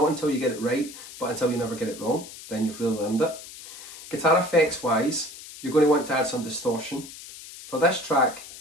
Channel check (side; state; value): left; noise; hiss, 15 dB below the sound